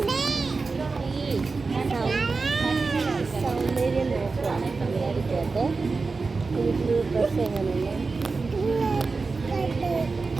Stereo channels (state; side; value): quieter; left; 4.2 dB